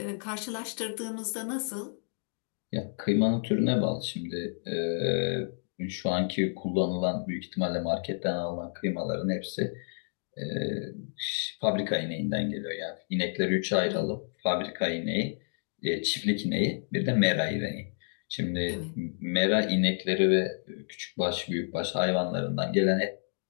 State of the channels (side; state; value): right; silent; digital silence